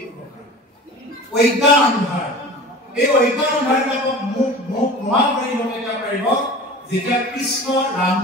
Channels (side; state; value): both; normal; correlation 0.38